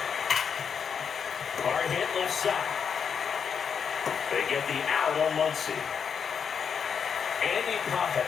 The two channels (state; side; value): quieter; right; 6.9 dB